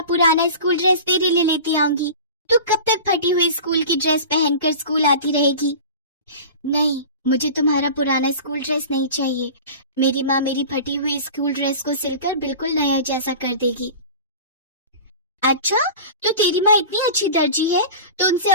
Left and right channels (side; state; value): both; inverted; correlation -0.35